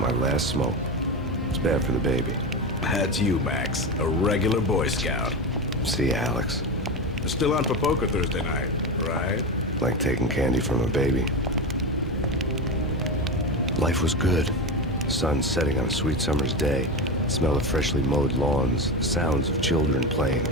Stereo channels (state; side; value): normal; both; correlation 0.20